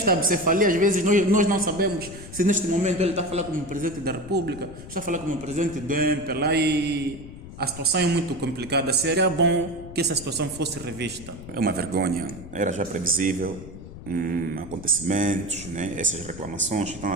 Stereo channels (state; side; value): noise; left; rumble, 14 dB below the sound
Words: bicefalia, às vezes, nós não sabemos se neste momento ele está a falar como presidente da República, está a falar como presidente do MPLA e a situação é muito complicada. Seria bom que essa situação fosse revista. É uma vergonha, era já previsível. Acontecimentos, né? Essas reclamações que estão